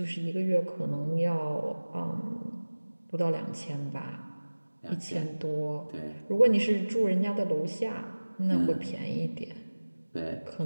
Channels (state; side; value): inverted; both; correlation -1.00